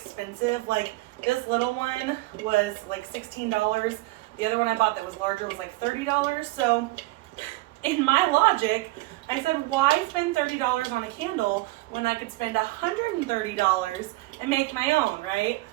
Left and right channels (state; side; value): quieter; left; 20.6 dB